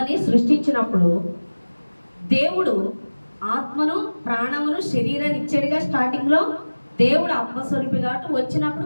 సృష్టించినప్పుడు దేవుడు ఆత్మను, ప్రాణమును, శరీరాన్ని ఇచ్చాడుగా. స్టార్టింగ్లో దేవుడు ఆత్మస్వరూపి కాబట్టి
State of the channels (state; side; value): inverted; both; correlation -1.00